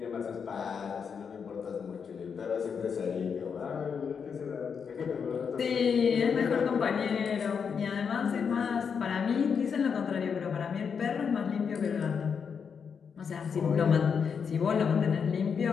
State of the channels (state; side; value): quieter; right; 6.5 dB